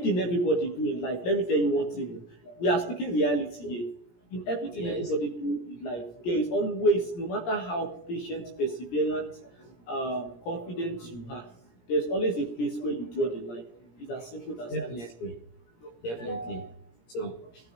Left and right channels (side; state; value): right; late; 17 ms